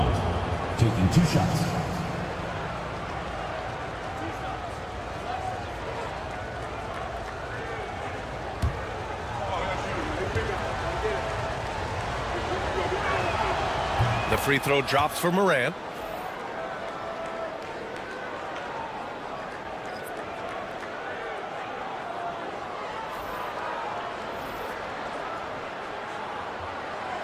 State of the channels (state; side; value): identical; both; correlation 1.00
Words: taking 2 shots. free throw drops for Morant.